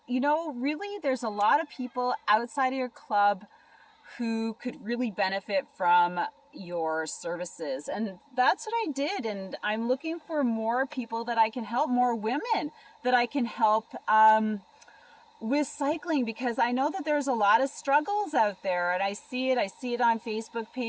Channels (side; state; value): both; identical; correlation 1.00